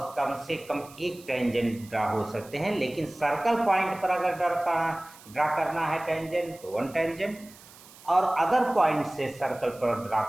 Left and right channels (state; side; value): noise; right; hiss, 22 dB below the sound